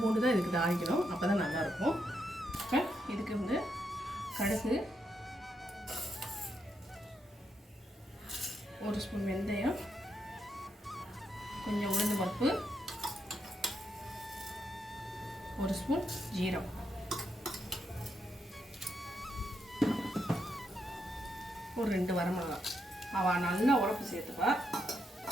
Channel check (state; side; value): normal; both; correlation 0.81